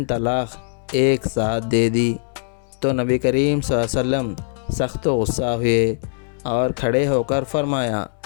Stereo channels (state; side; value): silent; right; digital silence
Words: طلاق ایک ساتھ دے دی، تو نبی کریم صلی اللہ علیہ وسلم سخت غصہ ہوئے اور کھڑے ہو کر فرمایا،